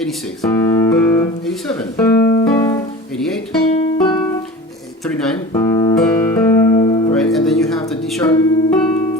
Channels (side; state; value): both; normal; correlation 0.35